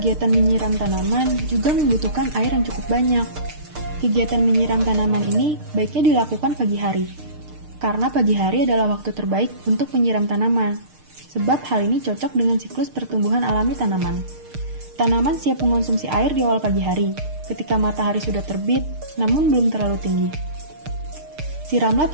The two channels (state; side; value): late; left; 6.6 ms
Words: menyiram tanaman juga membutuhkan air yang cukup banyak. Kegiatan menyiram tanaman ini baiknya dilakukan pagi hari, karena pagi hari adalah waktu terbaik untuk menyiram tanaman, sebab hal ini cocok dengan siklus pertumbuhan alami tanaman. Tanaman siap mengonsumsi air di awal pagi hari, ketika matahari sudah terbit, namun belum terlalu tinggi. Siramlah